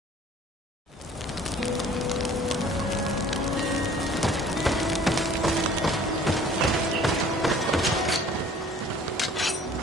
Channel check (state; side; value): normal; both; correlation 0.51